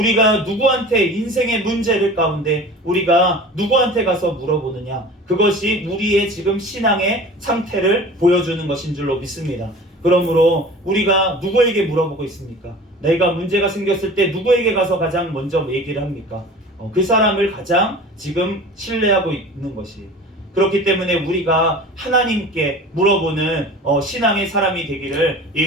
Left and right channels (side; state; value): both; normal; correlation 0.40